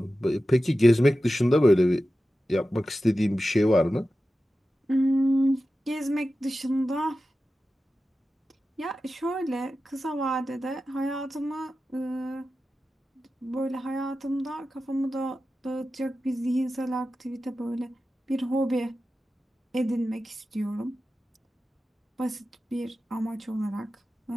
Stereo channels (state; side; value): normal; both; correlation 0.93